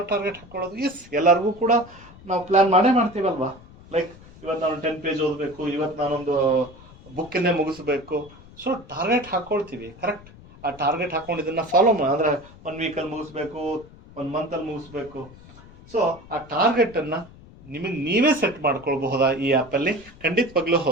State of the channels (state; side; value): noise; left; rumble, 21 dB below the sound